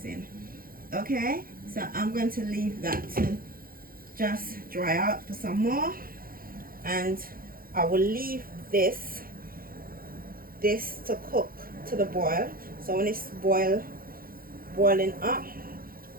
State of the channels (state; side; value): late; left; 0.42 ms